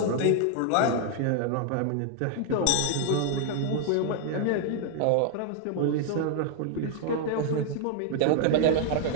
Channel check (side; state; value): both; different; correlation 0.00